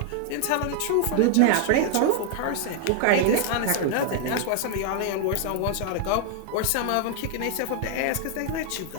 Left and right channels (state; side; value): different; both; correlation 0.00